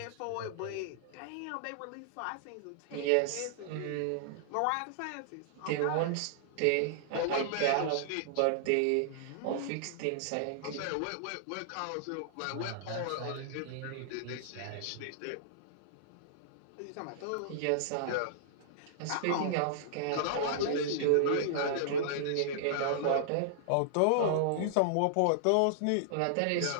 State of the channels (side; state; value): both; different; correlation -0.01